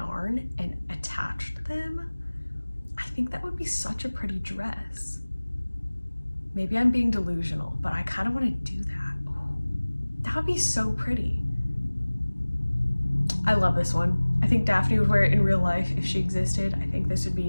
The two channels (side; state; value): both; inverted; correlation -1.00